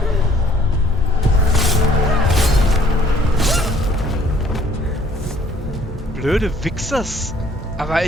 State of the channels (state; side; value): normal; both; correlation 0.60